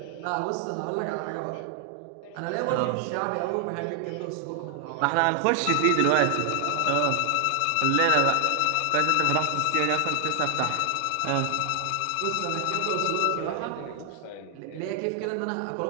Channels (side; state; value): both; different; correlation 0.00